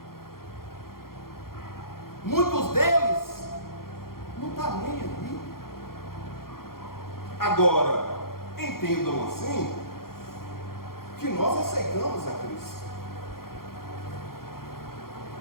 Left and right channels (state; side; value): late; right; 0.92 ms